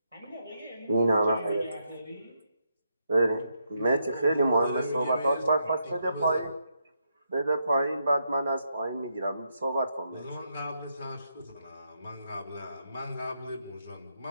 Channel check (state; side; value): inverted; both; correlation -0.80